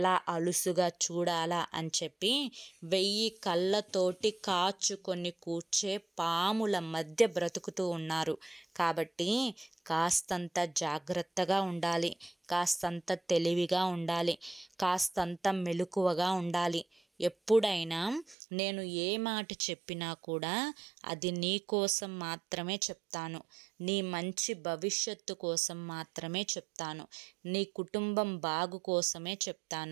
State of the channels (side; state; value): left; drops out; at 18.4 s